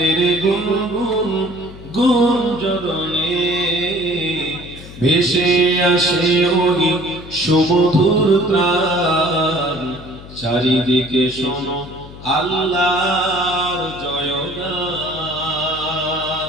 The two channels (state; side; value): noise; left; hum, 16 dB below the sound